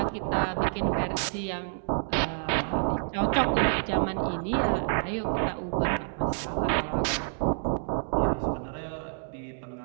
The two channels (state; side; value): silent; left; digital silence